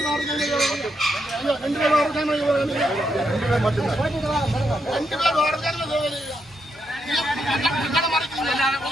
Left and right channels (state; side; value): normal; both; correlation 0.80